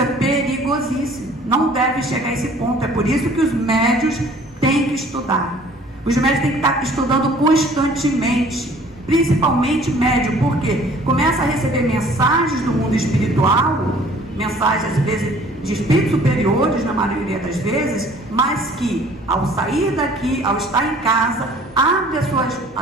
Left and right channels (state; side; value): normal; both; correlation 0.53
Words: perigosíssimo, não deve chegar a esse ponto. É por isso que os médios têm que estudar. Os médios têm que estar estudando constantemente, principalmente médium, porque começa a receber mensagens do mundo espiritual, mensagens às vezes de espíritos superiores, na maioria das vezes, mas que ao sair daqui, ao estar em casa, abre